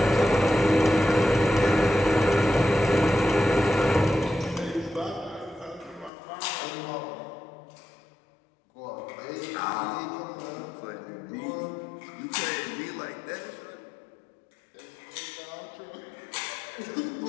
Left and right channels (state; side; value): drops out; right; at 6.1 s